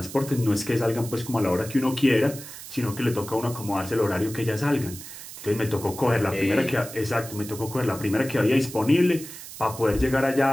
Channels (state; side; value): noise; right; hiss, 13 dB below the sound